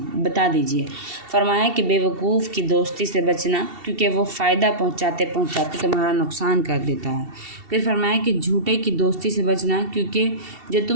دیجئے۔ فرمایا کہ بے وقوف کی دوستی سے بچنا، کیونکہ وہ فائدہ پہنچاتے تمہارا نقصان کر دیتا ہے۔ پھر فرمایا کہ جھوٹے کی دوستی سے بچنا، کیونکہ جو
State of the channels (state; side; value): late; left; 2.7 ms